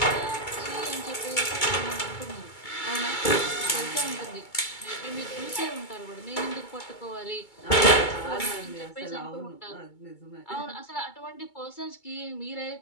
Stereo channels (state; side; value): late; right; 2.2 ms